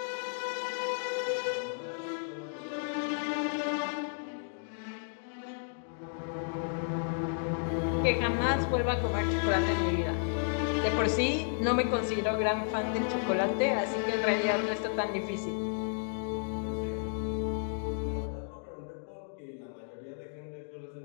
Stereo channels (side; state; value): right; silent; digital silence